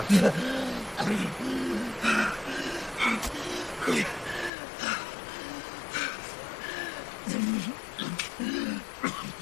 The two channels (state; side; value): drops out; right; at 4.5 s